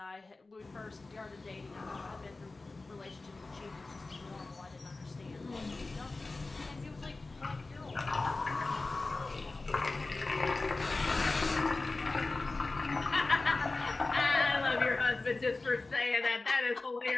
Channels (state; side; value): quieter; right; 3.4 dB